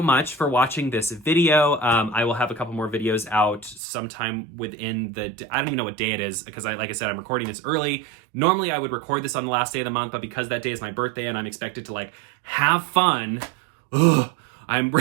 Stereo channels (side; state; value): left; drops out; at 3.8 s